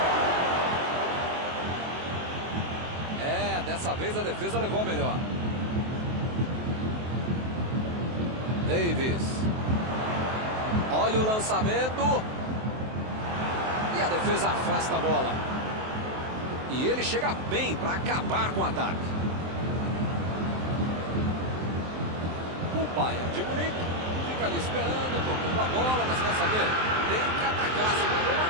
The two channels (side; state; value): left; late; 23 ms